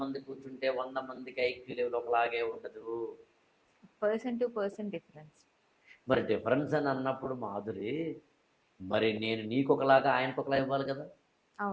మంది కూర్చుంటే 100 మందికి ఐక్యూ లెవెల్ ఒకలాగే ఉండదు. డిఫరెన్స్. మరి డిఫరెన్స్ అని అన్నప్పుడు మాధురి, మరి నేను నీకు ఒకలాగా ఆయనకు ఒకలా ఇవ్వాలి కదా.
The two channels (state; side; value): identical; both; correlation 1.00